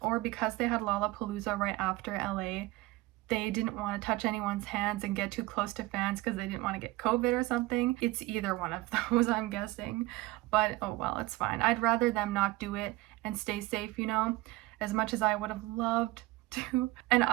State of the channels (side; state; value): left; quieter; 19.6 dB